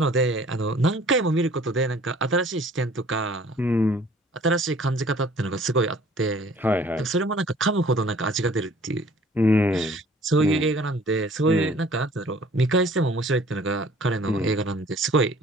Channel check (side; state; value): both; normal; correlation 0.53